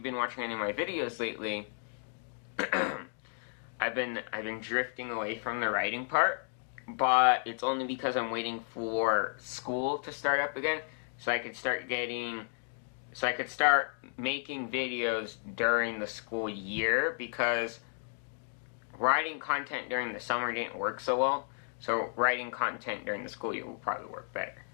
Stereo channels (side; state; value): right; silent; digital silence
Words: been watching any of my videos lately, I've been drifting away from the writing part, but it's only because I'm waiting for school to start up again, so I could start making videos during the school year, because writing content during the summer didn't work so well, so writing content during the school year will probably work better.